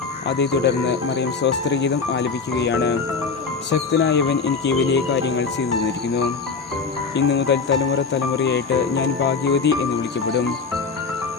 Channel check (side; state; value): right; quieter; 4.9 dB